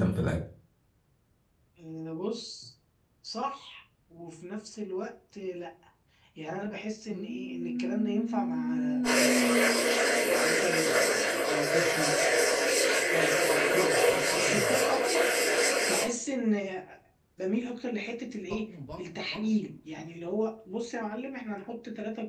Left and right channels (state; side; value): identical; both; correlation 1.00